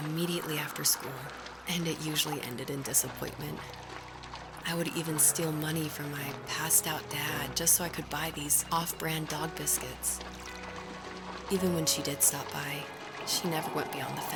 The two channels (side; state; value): both; identical; correlation 1.00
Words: after school, and it usually ended in disappointment. I would even steal money from my passed out dad just so I could buy these off-brand dog biscuits. Even when she did stop by, she never went beyond the